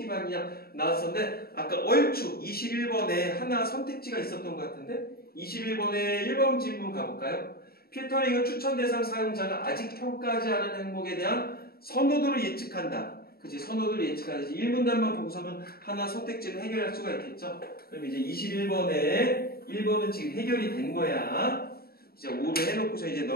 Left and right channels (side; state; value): right; late; 0.45 ms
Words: 나왔었는데 아까 얼추 21번에 하나 선택지가 있었던 것 같은데 21번에 1번 질문 가볼까요? 필터링은 추천 대상 사용자가 아직 평가하지 않은 항목에 대한 선호도를 예측한다. 그치? 선호도를 예측하지. 1문단만 보고서는 하나 선택지를 해결할 수가 있겠죠? 그럼 이제 21번에 1번은 지금 해결이 된 거야. 이제 5를 해놓고서 이제